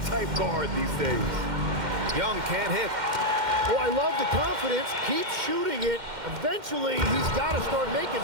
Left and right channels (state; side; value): late; left; 2.1 ms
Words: guard these days. Young can't hit. Well, I love the confidence. Keep shooting it. Eventually, he's got to start making